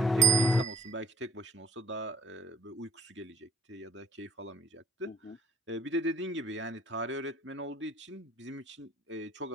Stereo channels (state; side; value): normal; both; correlation 0.61